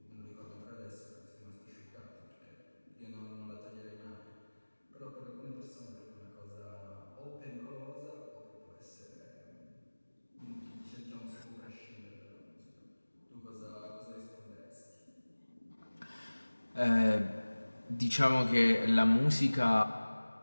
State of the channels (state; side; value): inverted; both; correlation -1.00